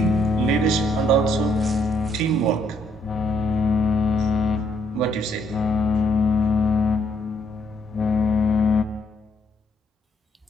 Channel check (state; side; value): normal; both; correlation 0.70